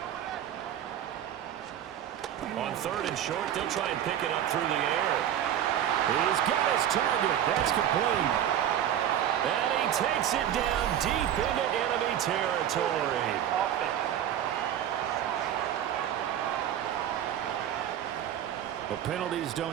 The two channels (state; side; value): quieter; left; 10.7 dB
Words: On 3rd and short, they'll try and pick it up through the air. He's got his target. That's complete. And he takes it down deep into enemy territory. The penalties